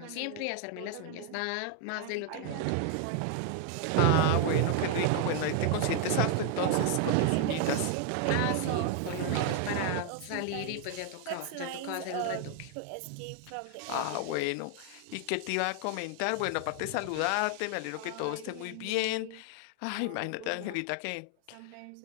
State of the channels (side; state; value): both; different; correlation 0.00